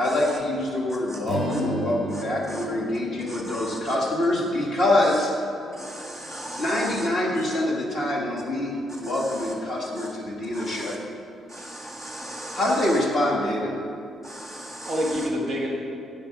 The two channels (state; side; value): normal; both; correlation 0.75